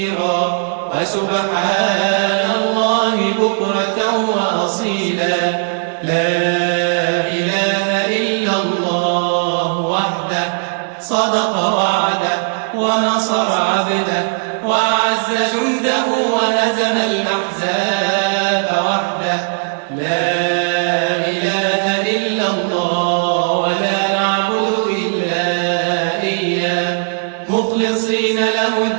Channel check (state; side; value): silent; left; 61 dB below the other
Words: وسبحان الله بكرة وأصيلا. لا إله إلا الله وحده صدق وعده ونصر عبده وأعز جنده وهزم الأحزاب وحده. لا إله إلا الله ولا نعبد إلا إياه مخلصين له